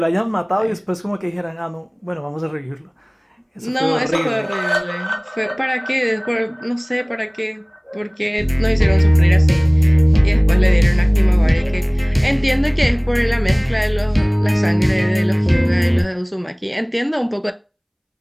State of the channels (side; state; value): both; identical; correlation 1.00